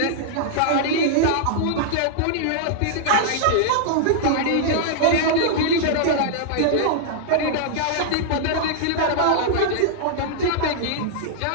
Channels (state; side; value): different; both; correlation -0.01